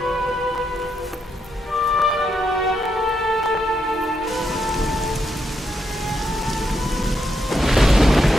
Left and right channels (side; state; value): both; normal; correlation 0.80